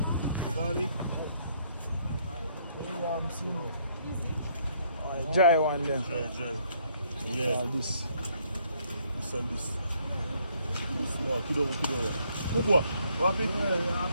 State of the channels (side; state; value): both; inverted; correlation -0.67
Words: Ghani. Dry one there. Dry. Yeah. This. This and this. Small. Kidogo. Kubwa. Wapi?